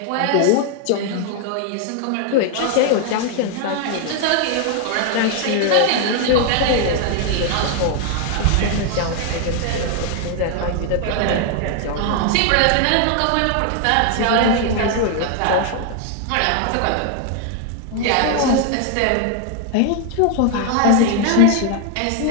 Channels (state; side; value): different; both; correlation 0.00